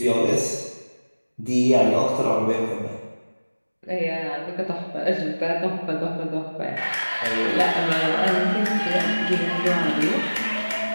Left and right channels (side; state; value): both; inverted; correlation -1.00